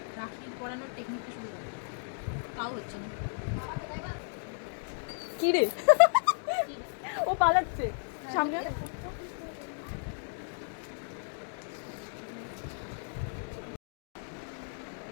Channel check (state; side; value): silent; right; digital silence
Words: রাখি পরানোর টেকনিকটা শুরু করে তাও হচ্ছে না। কি রে ও পালাচ্ছে সামনে।